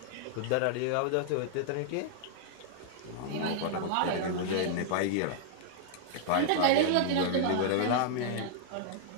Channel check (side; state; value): both; different; correlation -0.01